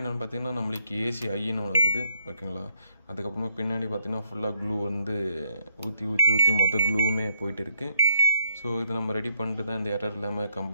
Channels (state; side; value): inverted; both; correlation -0.72